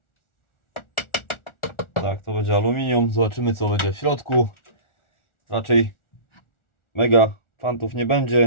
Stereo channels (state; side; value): late; right; 1.4 ms